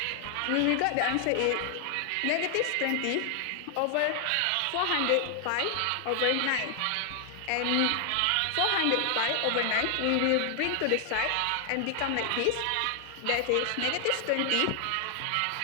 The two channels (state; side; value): different; both; correlation 0.00